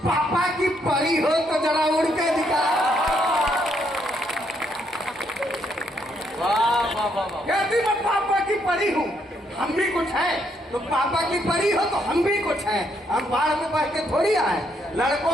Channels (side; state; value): both; normal; correlation 0.74